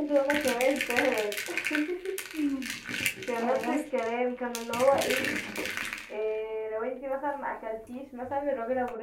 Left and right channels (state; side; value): identical; both; correlation 1.00